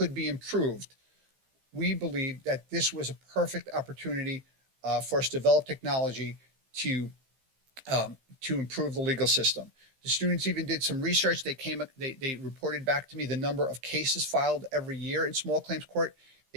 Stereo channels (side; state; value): left; late; 15 ms